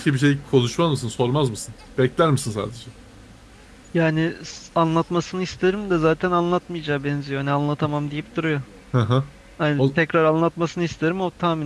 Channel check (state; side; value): identical; both; correlation 1.00